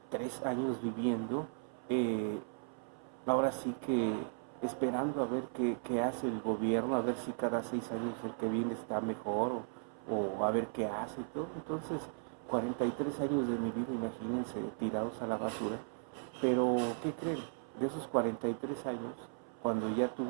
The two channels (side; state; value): left; silent; 53 dB below the other